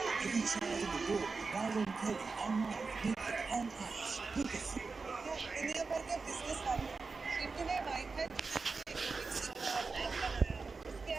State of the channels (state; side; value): quieter; left; 4.4 dB